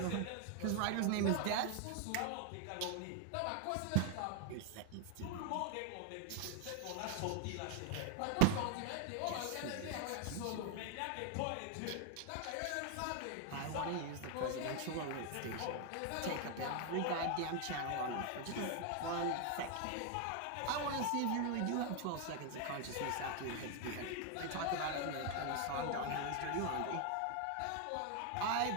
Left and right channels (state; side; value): different; both; correlation 0.01